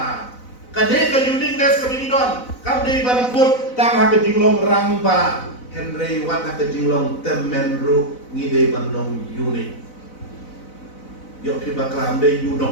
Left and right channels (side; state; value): right; late; 4.0 ms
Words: Kaneka uniqueness kabinidon kamday bangkot tang hakajilong rangba. Henry wat hakajilong temenru ngide bandong unique. Yo kiba kamday